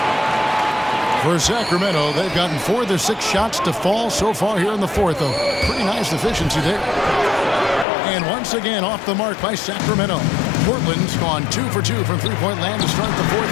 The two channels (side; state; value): right; drops out; at 7.9 s